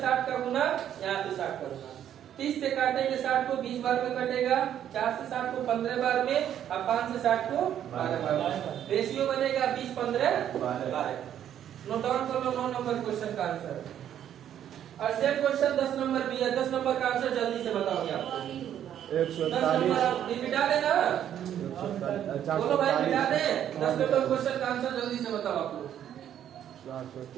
60 का गुना यहाँ पे 60 का गुना 30 से काटेंगे 60 को 20 बार में कटेगा 4 से 60 को 15 बार में और 5 से 60 को 12 बार में रेशियो बनेगा 20:15:12। नोट डाउन कर लो 9 नंबर क्वेश्चन का आंसर। और सेम क्वेश्चन 10 नंबर भी है 10 नंबर का आंसर जल्दी से बताओगे आप 141 मिटा देना बोलो भाई मिटा दे 10 नंबर क्वेश्चन का आंसर जल्दी से बताओ आप लोग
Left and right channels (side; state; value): left; quieter; 10.3 dB